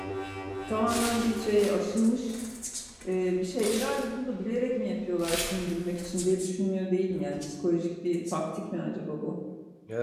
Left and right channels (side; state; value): both; identical; correlation 1.00